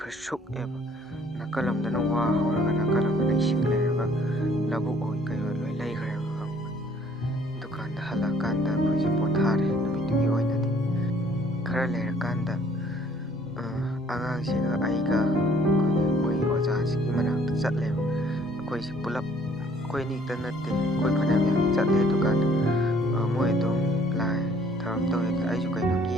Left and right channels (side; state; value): both; normal; correlation 0.59